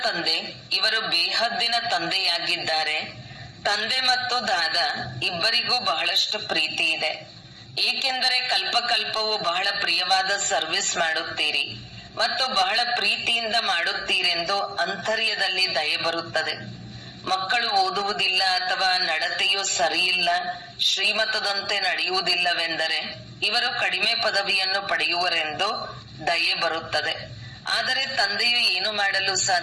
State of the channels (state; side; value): identical; both; correlation 1.00